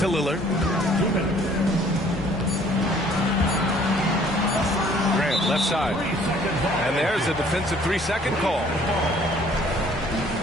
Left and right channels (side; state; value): both; normal; correlation 0.57